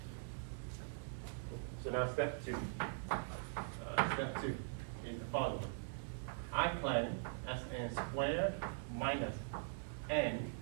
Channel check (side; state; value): left; silent; digital silence